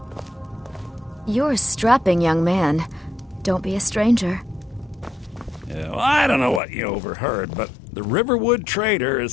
You're a strapping young man. Don't be a stranger. Yeah, well, I don't know what you overheard, but the Riverwood Trader is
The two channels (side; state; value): right; drops out; at 6.6 s